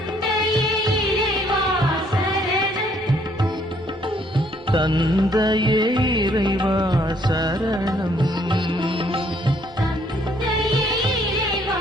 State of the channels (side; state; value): both; normal; correlation 0.66